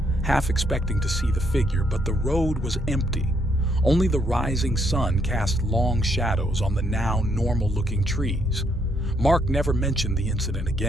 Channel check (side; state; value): both; normal; correlation 0.73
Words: half expecting to see the figure, but the road was empty. Only the rising sun cast long shadows on the now normal-looking trees. Mark never mentioned the incident